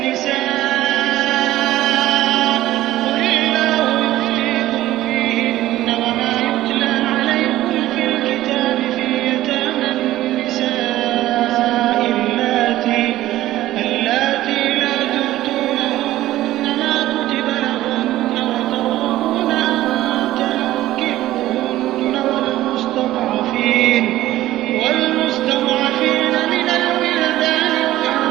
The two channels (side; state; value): left; quieter; 15.1 dB